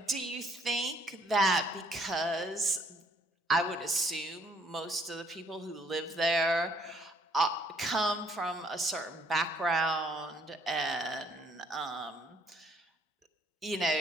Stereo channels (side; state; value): both; normal; correlation 0.64